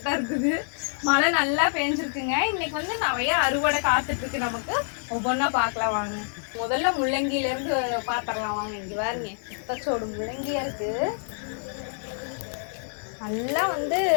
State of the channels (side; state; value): right; silent; 60 dB below the other